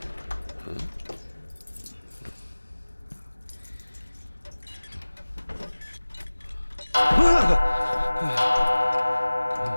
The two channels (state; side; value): inverted; both; correlation -1.00